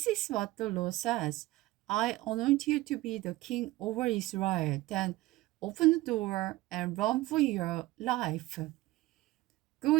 is what the Lord says. I anoint you to be the king over Israel. Then open the door and run for your life.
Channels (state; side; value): quieter; left; 18.4 dB